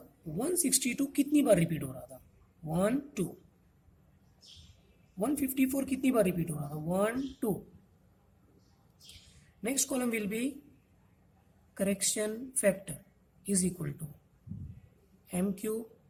162 कितनी बार रिपीट हो रहा था? 1 2. 154 कितनी बार रिपीट हो रहा था? 1 2. Next column will be correction factor is equal to M³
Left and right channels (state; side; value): identical; both; correlation 1.00